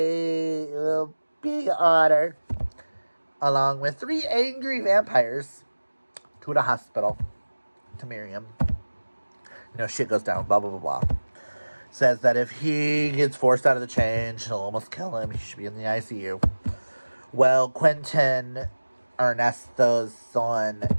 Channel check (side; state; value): both; inverted; correlation -1.00